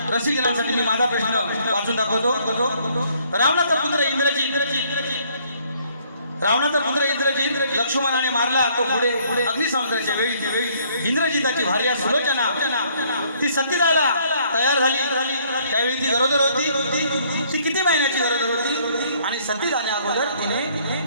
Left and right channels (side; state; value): both; inverted; correlation -0.64